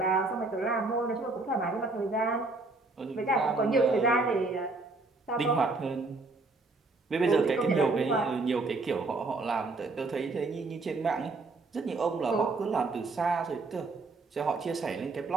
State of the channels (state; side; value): quieter; left; 3.5 dB